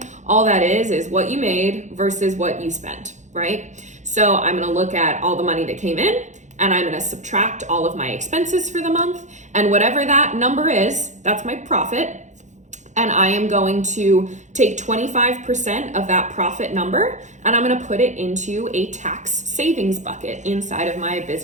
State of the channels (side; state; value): left; late; 0.35 ms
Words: all that is what you made versus what you spent, right? So I'm gonna look at all the money that came in, and I'm gonna subtract all of my expenses for the month, and whatever that number is, that's my profit. And I am going to take 25% of that profit number, and I'm gonna put it into a tax savings bucket inside of my